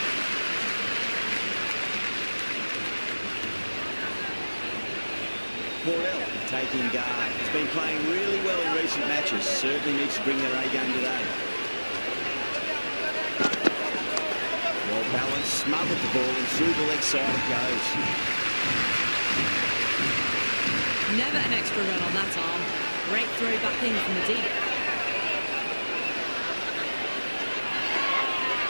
Morel taking guard. He's been playing really well in recent matches. Certainly needs to bring their A game today. Well balanced, smothered the ball and through the leg side it goes. Never an extra run on that arm. Great throw back in from the deep.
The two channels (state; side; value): inverted; both; correlation -1.00